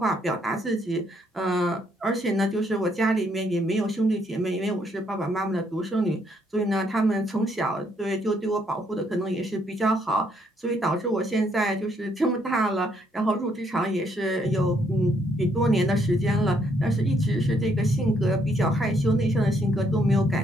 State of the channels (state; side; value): normal; both; correlation 0.71